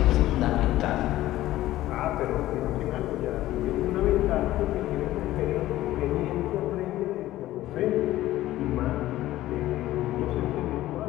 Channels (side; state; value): right; quieter; 15.2 dB